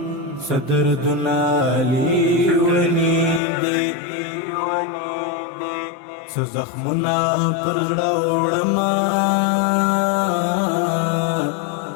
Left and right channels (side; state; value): right; drops out; at 3.4 s